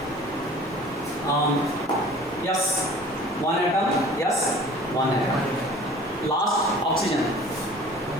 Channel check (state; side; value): normal; both; correlation 0.47